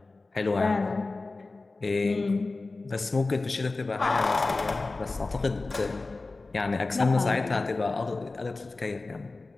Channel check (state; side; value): quieter; right; 3.4 dB